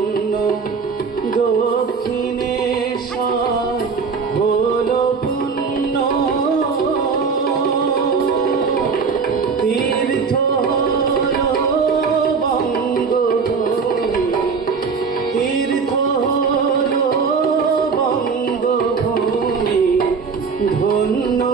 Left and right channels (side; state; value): left; quieter; 5.3 dB